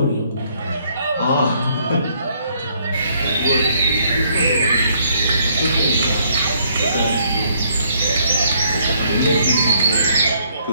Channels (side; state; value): both; inverted; correlation -0.67